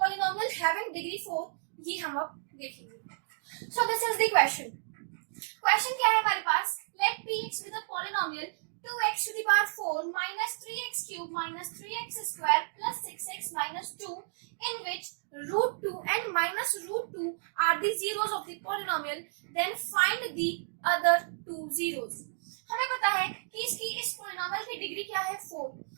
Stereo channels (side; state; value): left; silent; digital silence